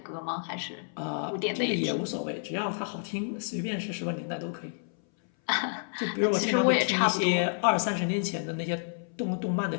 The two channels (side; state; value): right; silent; 58 dB below the other